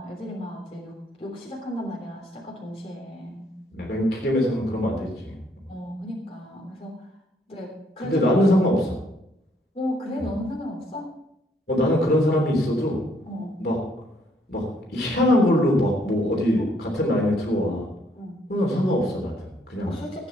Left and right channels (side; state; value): both; normal; correlation 0.68